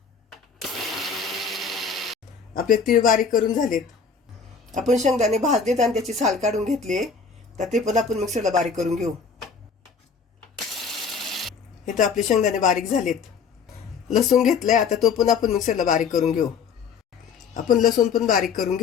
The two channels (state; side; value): quieter; right; 5.7 dB